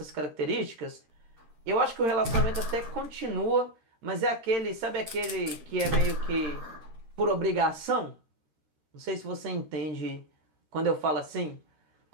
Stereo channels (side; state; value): left; late; 13 ms